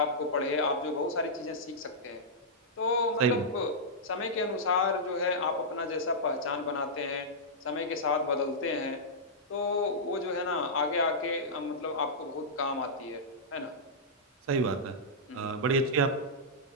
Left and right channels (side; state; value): both; normal; correlation -0.12